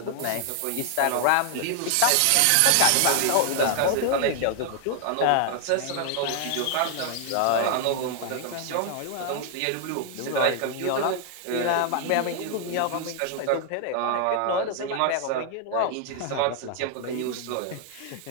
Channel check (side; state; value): both; different; correlation 0.00